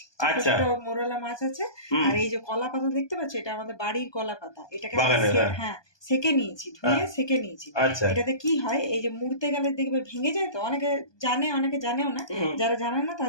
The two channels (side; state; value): right; late; 1.2 ms